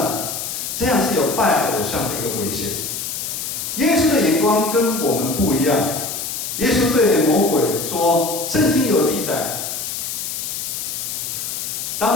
这样是有拜偶像的一个危险。耶稣的眼光跟我们不一样。耶稣对魔鬼说：“圣经有记载，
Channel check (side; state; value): left; noise; hiss, 5 dB below the sound